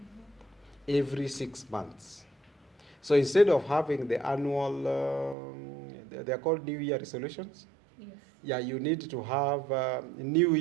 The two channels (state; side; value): drops out; left; at 5.4 s